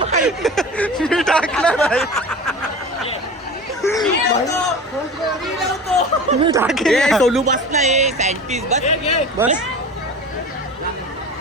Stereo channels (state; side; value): normal; both; correlation 0.35